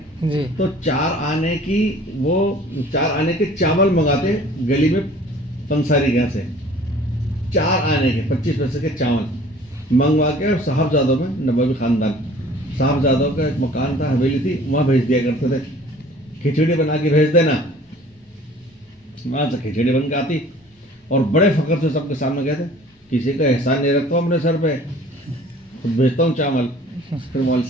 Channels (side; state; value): both; normal; correlation 0.50